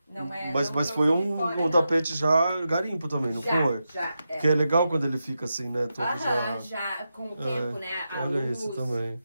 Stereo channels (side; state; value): both; inverted; correlation -0.89